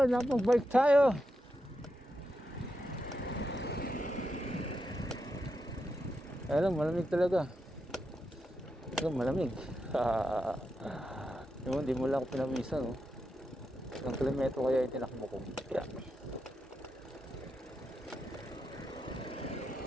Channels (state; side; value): normal; both; correlation 0.86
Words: napag-bike tayo. Alam, malamig talaga. Ito, malamig. Hindi mo lang ako pinamisan, no? Ilang kilometro kaya yung tinakbo ko. Yeah.